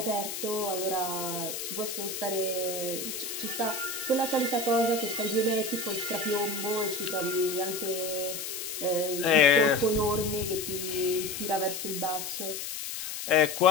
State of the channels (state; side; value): noise; left; hiss, 6 dB below the sound